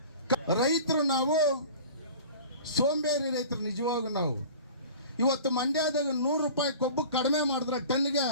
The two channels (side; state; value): both; inverted; correlation -0.41